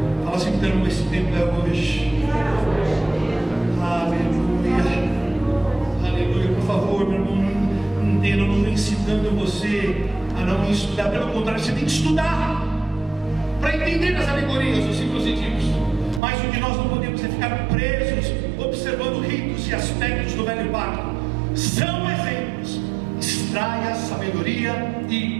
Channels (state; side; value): drops out; left; at 16.2 s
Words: Fala assim, então, esse tempo é hoje. Aleluia. Aleluia. Por favor, meu irmão, não entenda, eu não estou incitando você a não estudar. Pelo contrário, você tem que estudar para entender as alegorias, os símbolos e tipos. Mas o que nós não podemos é ficar presos observando ritos e aspectos do velho pacto. São exemplos. Extraia a sabedoria